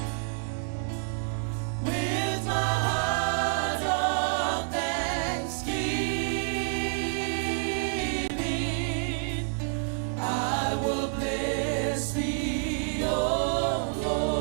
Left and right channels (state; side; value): silent; left; digital silence